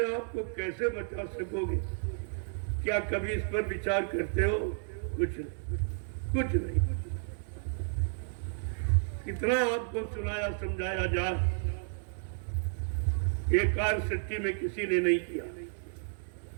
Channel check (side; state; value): left; silent; 56 dB below the other